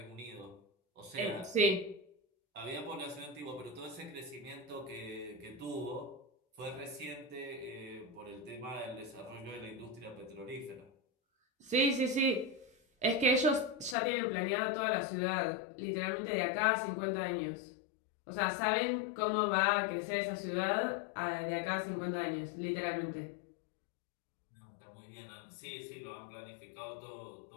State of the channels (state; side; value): drops out; right; at 14.0 s